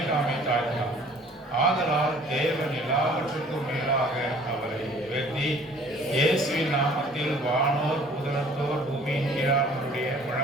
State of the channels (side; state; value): both; normal; correlation 0.53